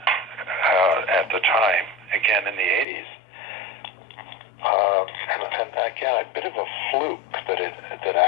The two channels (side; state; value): right; drops out; at 2.9 s